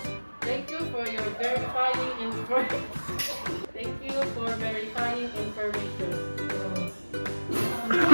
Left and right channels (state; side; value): inverted; both; correlation -1.00